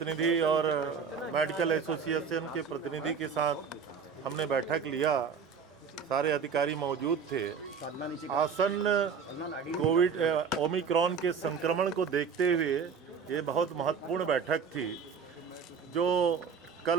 और मेडिकल एसोसिएशन के प्रतिनिधि के साथ हमने बैठक लिया। सारे अधिकारी मौजूद थे। आसन्न कोविड ओमिक्रॉन के संक्रमण को देखते हुए ये बहुत महत्वपूर्ण बैठक थी। जो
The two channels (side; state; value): left; quieter; 6.1 dB